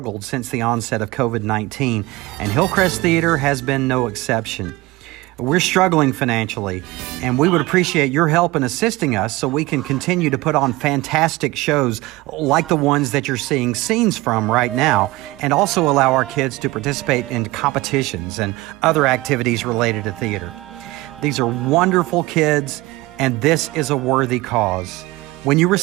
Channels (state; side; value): quieter; left; 20.4 dB